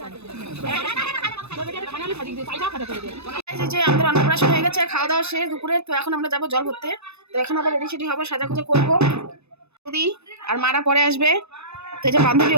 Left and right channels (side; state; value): left; late; 0.80 ms